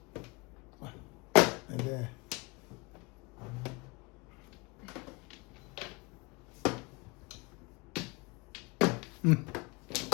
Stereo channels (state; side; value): quieter; right; 27.1 dB